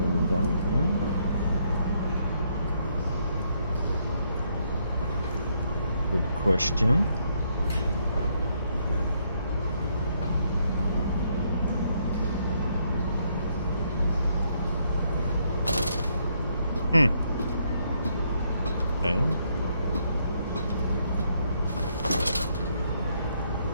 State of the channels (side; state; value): both; inverted; correlation -0.73